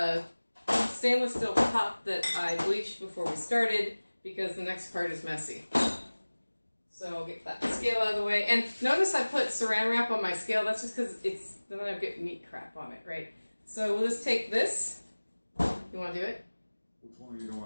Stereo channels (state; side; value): inverted; both; correlation -1.00